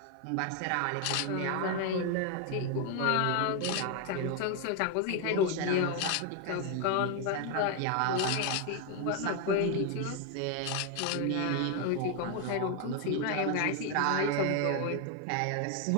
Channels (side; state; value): both; different; correlation 0.01